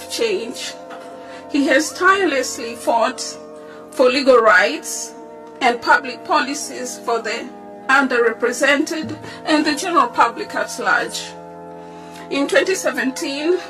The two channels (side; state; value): both; identical; correlation 1.00